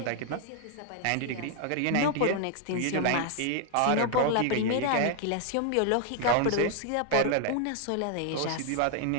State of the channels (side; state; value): both; different; correlation 0.00